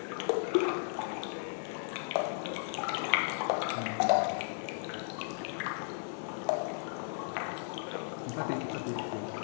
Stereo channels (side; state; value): right; silent; digital silence